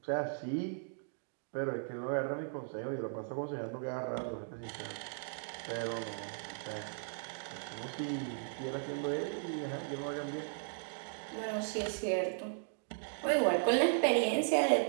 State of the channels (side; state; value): left; silent; digital silence